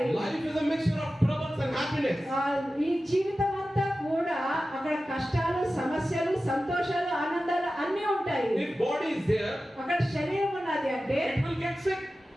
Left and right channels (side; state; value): both; normal; correlation 0.94